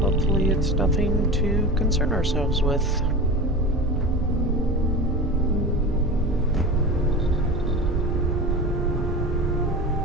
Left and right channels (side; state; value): both; normal; correlation 0.30